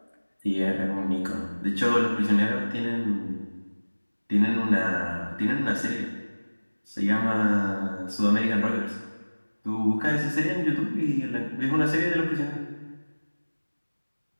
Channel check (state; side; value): inverted; both; correlation -1.00